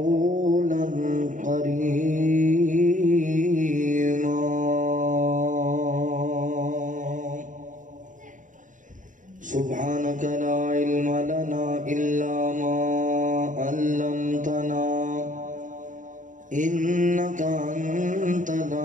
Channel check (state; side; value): late; left; 0.37 ms